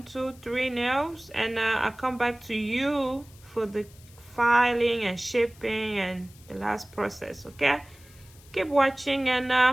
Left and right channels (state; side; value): noise; left; hiss, 25 dB below the sound